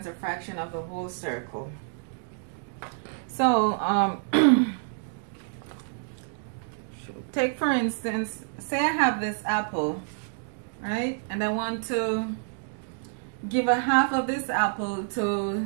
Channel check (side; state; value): left; silent; digital silence